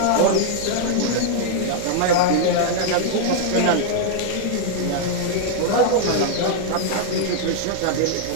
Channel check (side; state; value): both; different; correlation -0.01